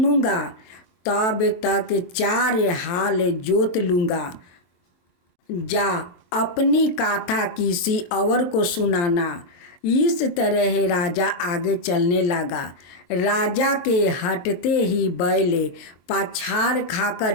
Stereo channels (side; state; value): right; late; 23 ms